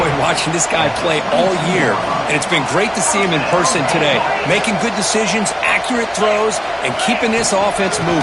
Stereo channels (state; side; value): identical; both; correlation 1.00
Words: watching this guy play all year, and it's been great to see him in person today, making good decisions, accurate throws, and keeping this offense